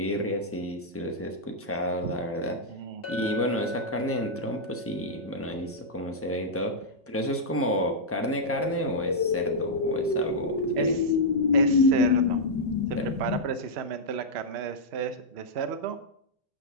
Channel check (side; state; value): both; normal; correlation -0.06